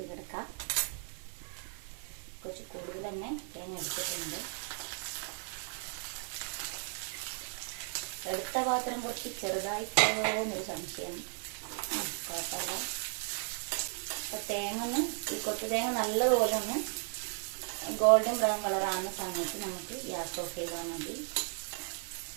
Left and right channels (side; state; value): left; silent; 54 dB below the other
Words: കിടക്കാം. കുറച്ച് കൂടുതൽ തന്നെ തേങ്ങ എടുത്തിട്ടുണ്ട്. എടുത്ത പാത്രം കുറച്ച് ചെറുതായി പോകുന്നൊരു സംശയം. കുഴപ്പമില്ല. അപ്പോൾ തേങ്ങ ഒന്ന് ഈ കൊട്ടു തേങ്ങ നല്ലതുപോലെ ഒന്ന് ഗോൾഡൻ ബ്രൗൺ കളറാകുന്ന സമയത്ത് നമുക്ക് ഗ്യാസ് ഓഫ് ചെയ്താൽ മതി.